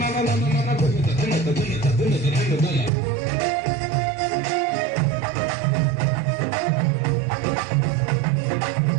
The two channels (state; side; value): drops out; left; at 2.9 s